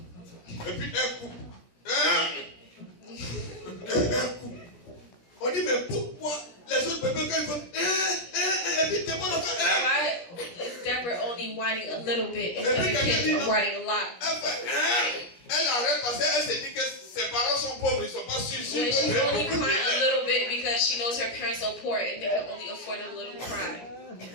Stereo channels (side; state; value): right; late; 17 ms